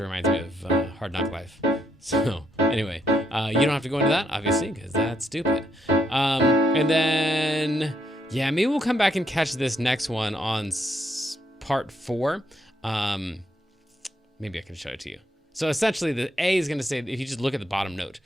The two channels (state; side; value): normal; both; correlation 0.74